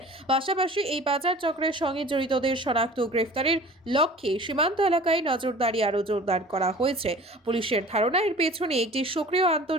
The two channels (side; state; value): both; normal; correlation 0.44